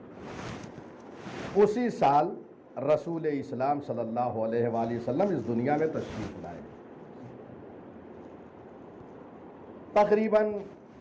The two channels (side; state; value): both; identical; correlation 1.00